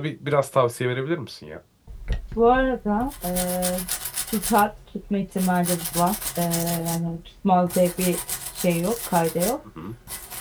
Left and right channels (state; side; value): identical; both; correlation 1.00